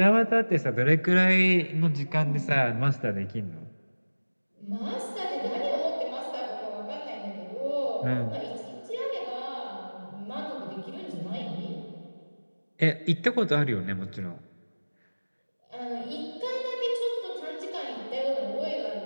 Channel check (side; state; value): both; inverted; correlation -1.00